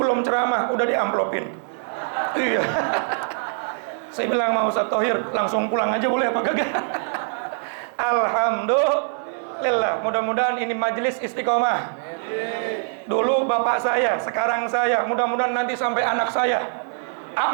ceramah udah diamplopin. Iya. Saya bilang mau Ustaz Thohir langsung pulang aja boleh apa kagak? Alhamdulillah. Mudah-mudahan ini majelis istiqomah. Dulu bapak saya, sekarang saya, mudah-mudahan nanti sampai anak saya.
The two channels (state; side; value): silent; left; digital silence